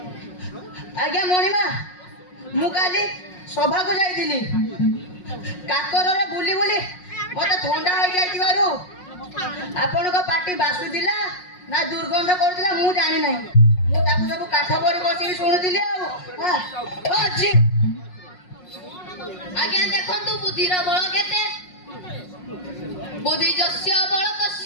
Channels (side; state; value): right; late; 5.5 ms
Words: ଆଜ୍ଞା ମଣିମା, ମୁଁ କାଲି ସଭାକୁ ଯାଇଥିଲି। କାକରରେ ବୁଲି ବୁଲି ମତେ ଥଣ୍ଡା ହେଇଯାଇଥିବାରୁ ଆପଣଙ୍କ ପାଟି ବାସୁଥିଲା ନା ଦୁର୍ଗନ୍ଧ କରୁଥିଲା ମୁଁ ଜାଣି ନାହିଁ। ମୁଁ ତାକୁ ସବୁ କାଠ ପରେ ବସିକି ଶୁଣୁଥିଲି। ଆଉ ଅଛି ଆଜ୍ଞା ଦେଖନ୍ତୁ ବୁଦ୍ଧିର ବଳ କେତେ। ବୁଦ୍ଧି ଯସ୍ୟ ବଳ